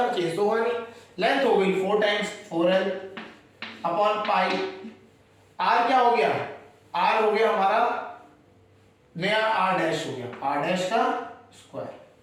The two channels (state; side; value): identical; both; correlation 1.00